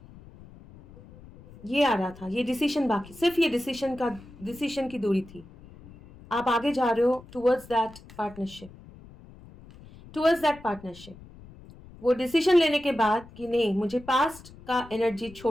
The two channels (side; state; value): left; noise; rumble, 20 dB below the sound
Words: ये आ रहा था, ये डिसीजन बाकी, सिर्फ ये डिसीजन की दूरी थी। आप आगे जा रहे हो towards that partnership, towards that partnership. वो डिसीजन लेने के बाद कि नहीं, मुझे पास्ट का एनर्जी